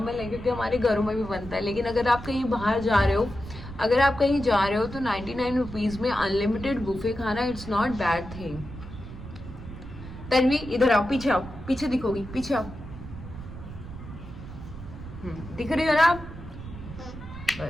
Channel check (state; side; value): noise; right; rumble, 12 dB below the sound